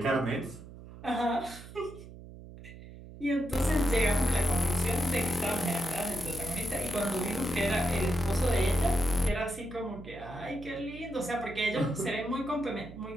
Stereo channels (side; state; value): right; noise; hum, 15 dB below the sound